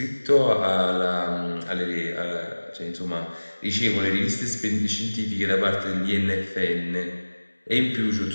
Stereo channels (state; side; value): inverted; both; correlation -1.00